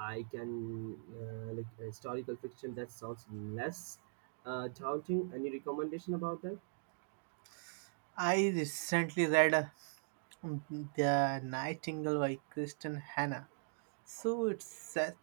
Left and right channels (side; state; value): left; silent; digital silence